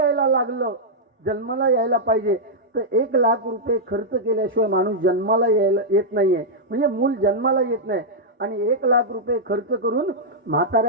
लागलं, जन्माला यायला पाहिजे तर 1 लाख रुपये खर्च केल्याशिवाय माणूस जन्माला यायला येत नाहीये. म्हणजे मूल जन्माला येत नाही. आणि 1 लाख रुपये खर्च करून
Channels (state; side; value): normal; both; correlation -0.07